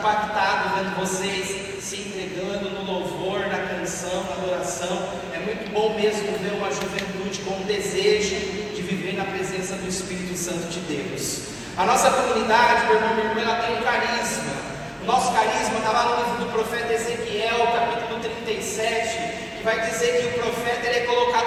vendo vocês se entregando no louvor, na canção, na adoração. É muito bom mesmo ver uma juventude com um desejo de viver na presença do Espírito Santo de Deus. A nossa comunidade, meu irmão, minha irmã, ela tem um carisma. O nosso carisma está lá no livro do profeta Ezequiel, capítulo 37, que vai dizer que o profeta ele é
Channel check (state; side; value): identical; both; correlation 1.00